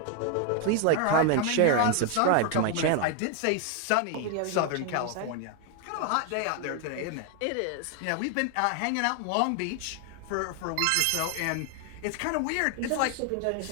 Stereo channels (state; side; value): different; both; correlation 0.01